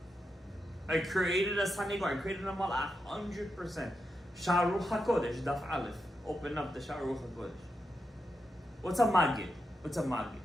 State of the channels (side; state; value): both; normal; correlation 0.86